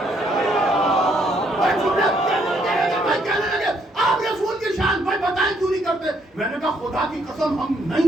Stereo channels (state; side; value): normal; both; correlation 0.70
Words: آپ رسول کی شان بھائی بتائیں کیوں نہیں کرتے. میں نے کہا خدا کی قسم ہم